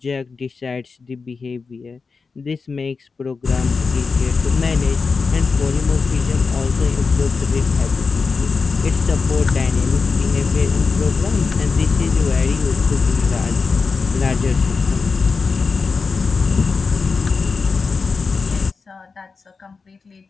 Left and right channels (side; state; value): right; quieter; 4.7 dB